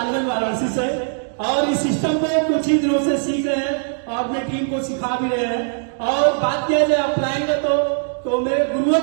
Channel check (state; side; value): silent; left; digital silence